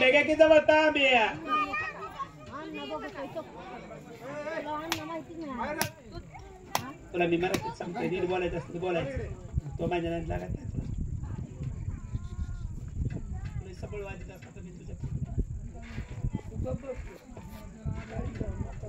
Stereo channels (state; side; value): identical; both; correlation 1.00